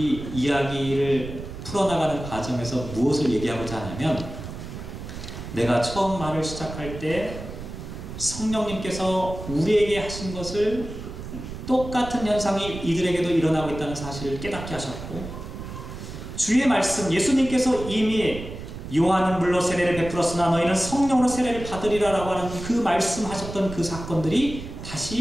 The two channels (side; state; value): right; noise; rumble, 10 dB below the sound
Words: 이야기를 풀어나가는 과정에서 무엇을 얘기하고자 하냐면, 내가 처음 말을 시작할 때 성령님께서 우리에게 하신 것을 똑같은 현상이 이들에게도 일어나고 있다는 사실을 깨닫게 하셨고, 주의 말씀, 예수님께서 이미 요한은 물로 세례를 베풀었으나 너희는 성령으로 세례를 받으리라 라고 하는 그 말씀하셨던 그 사건들이